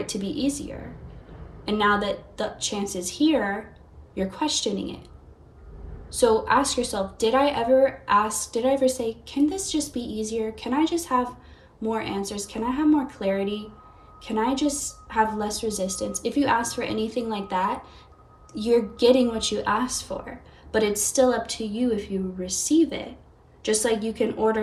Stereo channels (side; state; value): both; identical; correlation 1.00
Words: to be easier. And now that the chance is here, you're questioning it. So ask yourself, did I ever say, can this just be easier? Can I just have more answers? Can I have more clarity? Can I just have less resistance? If you ask for anything like that, you're getting what you asked for, but it's still up to you if you receive it. Just like you can